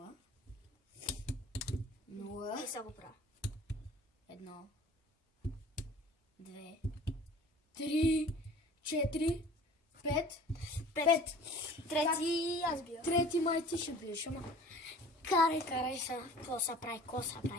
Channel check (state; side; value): normal; both; correlation 0.47